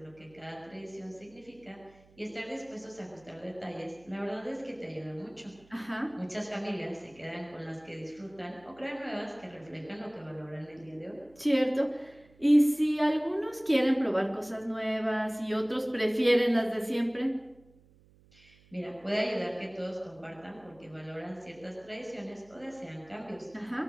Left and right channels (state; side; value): noise; right; hum, 27 dB below the sound